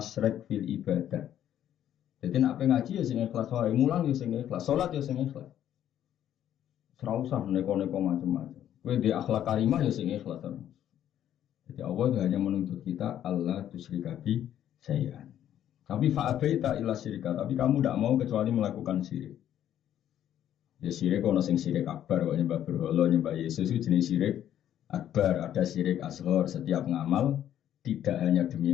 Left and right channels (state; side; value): quieter; right; 10.9 dB